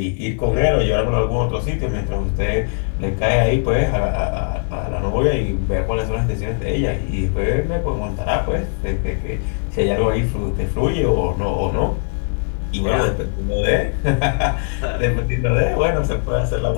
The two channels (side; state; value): right; silent; 56 dB below the other